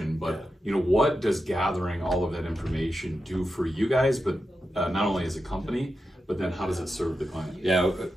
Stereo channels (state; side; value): normal; both; correlation 0.89